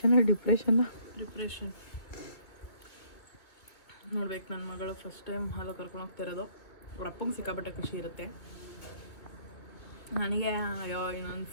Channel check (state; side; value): late; right; 2.4 ms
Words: ನೋಡ್ಬೇಕು. ನನ್ನ ಮಗಳು ಫಸ್ಟ್ ಟೈಮ್ ಹಾಲು ಕರ್ಕೊಂಡು ಹೋಗ್ತಾ ಇರೋದು. ಅವ್ರ ಅಪ್ಪಂಗೆ ಸಿಕ್ಕಾಪಟ್ಟೆ ಖುಷಿ ಇರುತ್ತೆ. ನನಗೆ ಇನ್ನೊಂದು